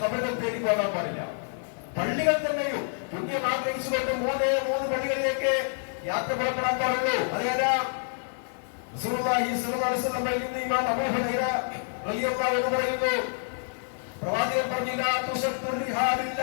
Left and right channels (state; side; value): silent; right; digital silence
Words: ഖബറുകൾ തേടി പോകാൻ പാടില്ല. പള്ളികൾ തന്നെയും പുണ്യം ആഗ്രഹിച്ചുകൊണ്ട് മൂന്ന് പള്ളികളിലേക്ക് യാത്ര പുറപ്പെടാൻ പാടുള്ളൂ. അതേതാ? റസൂലുള്ളാഹി സ്വല്ലല്ലാഹു അലൈഹി വസല്ലം പറയുന്നു, ഇമാം അബൂ ഹുറൈറ റളിയല്ലാഹു അൻഹു പറയുന്നു, പ്രവാചകൻ പറഞ്ഞില്ല,